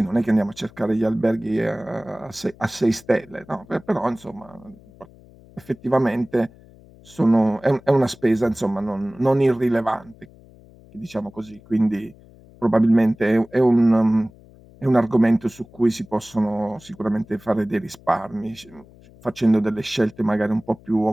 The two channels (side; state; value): left; noise; hum, 24 dB below the sound